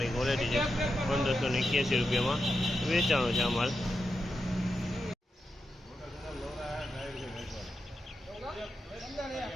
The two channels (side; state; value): both; normal; correlation 0.88